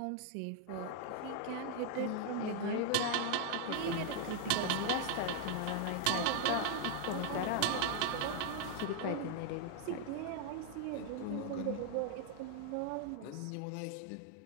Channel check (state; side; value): different; both; correlation 0.00